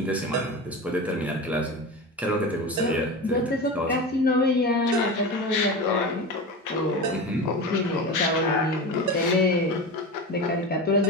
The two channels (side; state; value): both; normal; correlation 0.26